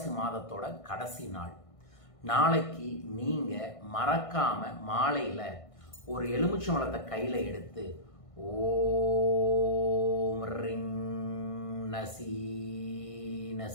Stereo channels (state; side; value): late; right; 1.5 ms